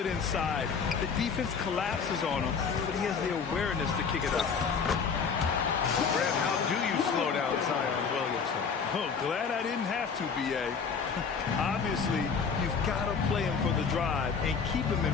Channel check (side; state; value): right; quieter; 5.8 dB